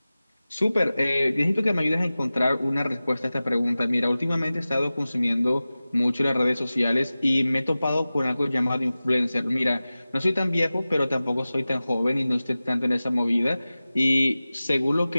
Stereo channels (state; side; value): inverted; both; correlation -0.96